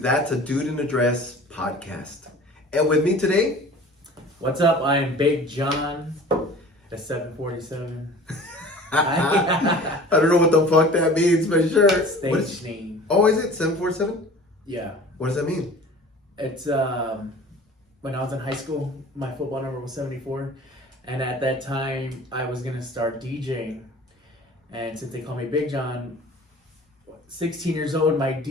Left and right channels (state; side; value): normal; both; correlation 0.43